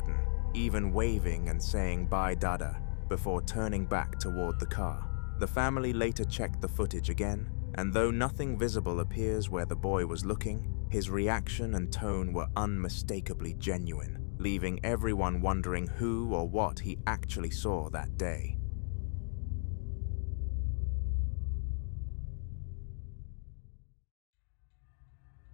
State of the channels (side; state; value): right; silent; digital silence